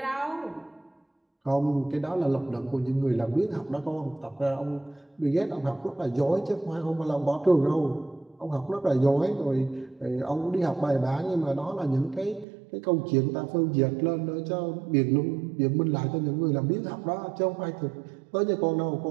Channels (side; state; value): left; drops out; at 12.5 s